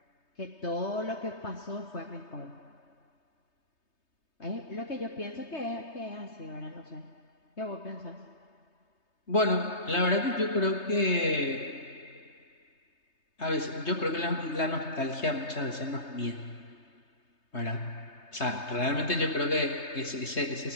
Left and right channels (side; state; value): right; late; 3.2 ms